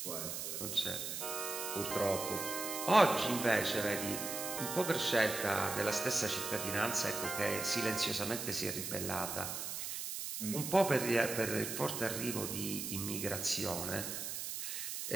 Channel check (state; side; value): noise; right; hiss, 4 dB below the sound